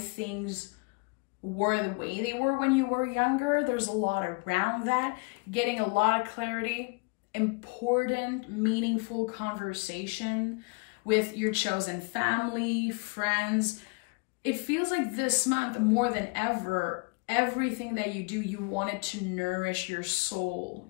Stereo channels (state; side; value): quieter; right; 31.5 dB